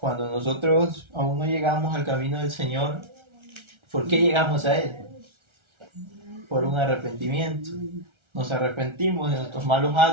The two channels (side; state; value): left; late; 1.3 ms